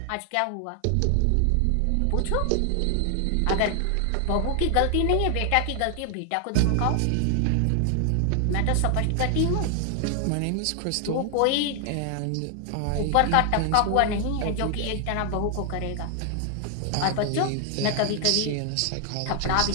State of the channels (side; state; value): both; different; correlation 0.00